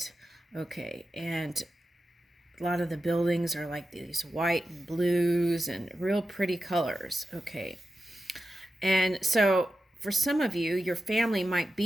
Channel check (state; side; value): normal; both; correlation 0.91